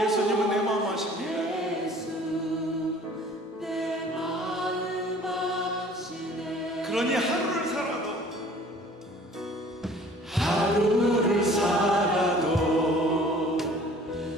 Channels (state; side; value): normal; both; correlation 0.51